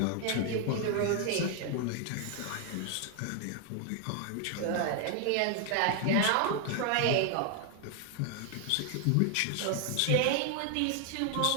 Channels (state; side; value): different; both; correlation 0.00